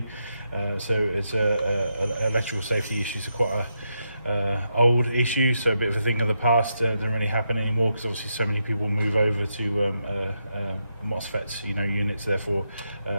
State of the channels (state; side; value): inverted; both; correlation -0.83